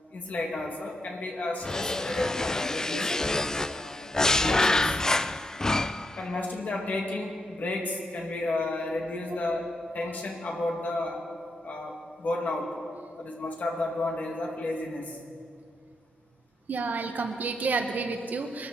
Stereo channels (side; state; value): both; normal; correlation 0.81